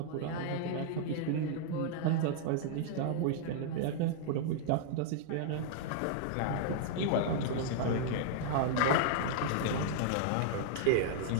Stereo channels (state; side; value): different; both; correlation -0.01